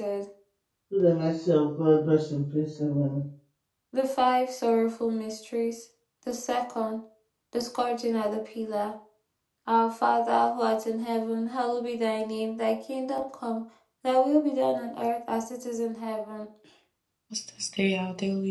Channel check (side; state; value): both; identical; correlation 1.00